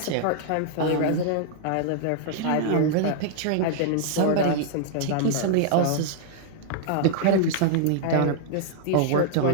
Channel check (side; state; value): both; different; correlation -0.01